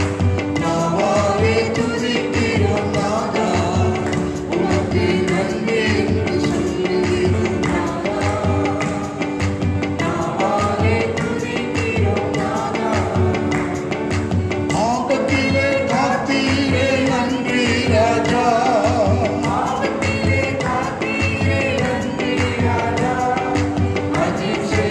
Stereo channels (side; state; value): both; identical; correlation 1.00